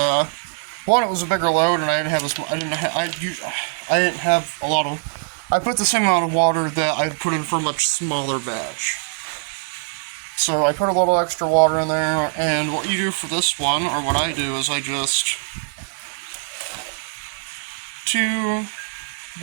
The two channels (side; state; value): left; silent; digital silence